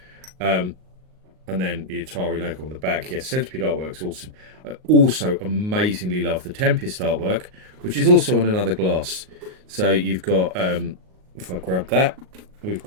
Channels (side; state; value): left; late; 38 ms